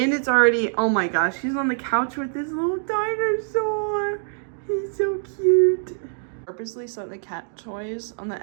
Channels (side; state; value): left; silent; digital silence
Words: already, oh my gosh, he's on the couch with this little dinosaur. He's so cute. Purposely set the cat toys on